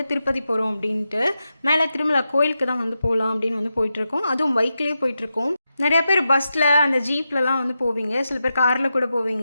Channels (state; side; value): inverted; both; correlation -0.89